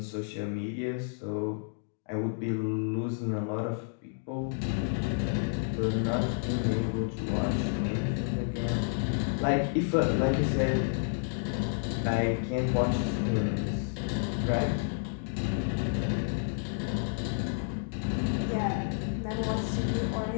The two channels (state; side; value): silent; right; digital silence